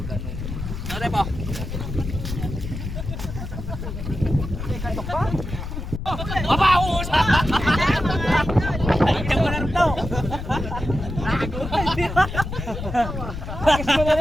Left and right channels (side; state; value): left; noise; rumble, 6 dB below the sound